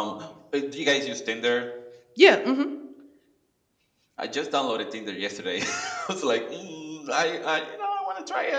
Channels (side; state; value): both; identical; correlation 1.00